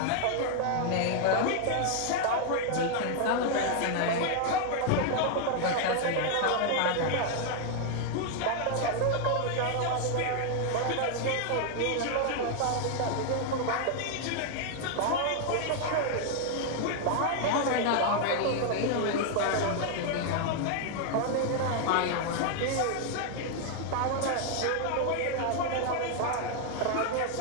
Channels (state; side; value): different; both; correlation 0.00